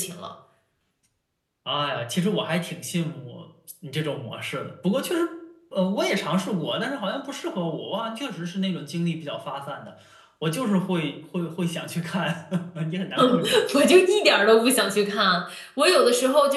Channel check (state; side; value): identical; both; correlation 1.00